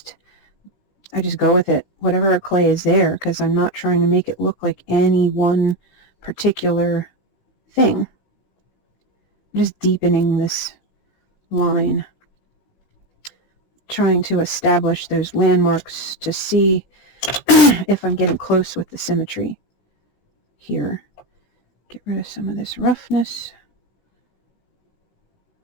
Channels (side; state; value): right; late; 17 ms